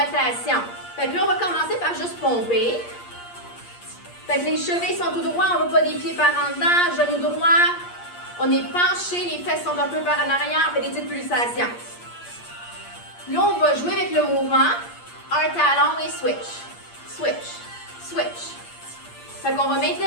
Fait que là, on va commencer par juste pomper. Fait que les chevilles sont tout droits, on ne va pas des pieds par en dedans, genoux droits. On est penché, les fesses sont un peu par en arrière, on fait des petites pulsations. Là, on va jouer avec le mouvement. Un talon et switch. Switch. Switch. Fait qu'on va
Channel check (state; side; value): late; right; 8.5 ms